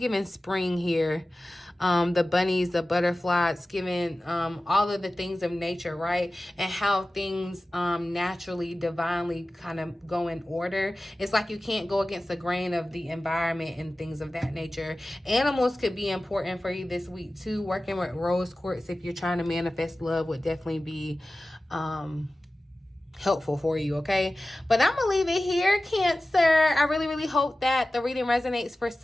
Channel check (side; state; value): both; normal; correlation 0.96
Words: spring here. The bunnies, the butterflies, giving all of the things of nature, right? And how things naturally, divinely kind of go in order. It's like you can't go against the grain of the environment and things of that nature. Animals could be important for you this week too. Working with rose quartz if you're trying to manifest love would definitely be helpful for you, okay? But I'm gonna leave it here, Cancer. I really hope that the reading resonates for